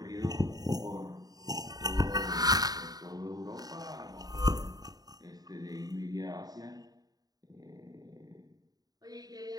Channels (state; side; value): late; left; 0.18 ms